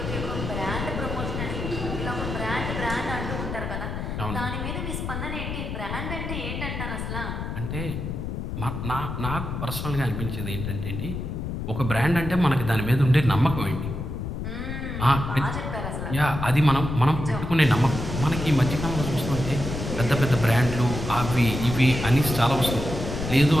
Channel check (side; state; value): left; noise; rumble, 5 dB below the sound